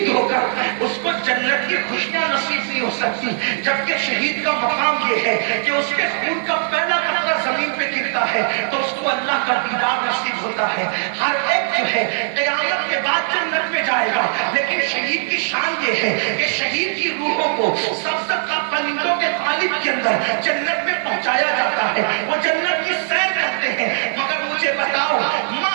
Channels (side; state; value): left; silent; 61 dB below the other